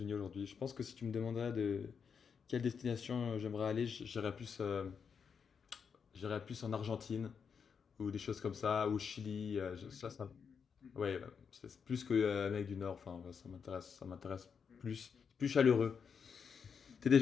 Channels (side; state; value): right; quieter; 6.5 dB